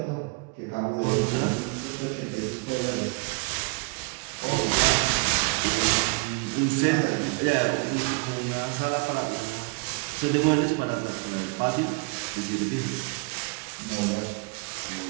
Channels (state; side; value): quieter; left; 30.1 dB